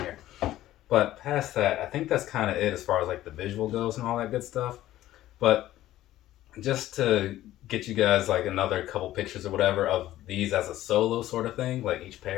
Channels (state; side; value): quieter; right; 14.3 dB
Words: here. But past that, I think that's kind of it as far as like the visual goes and all that good stuff. But just to get you guys like another couple pictures or whatever of these as a solo sort of thing, like each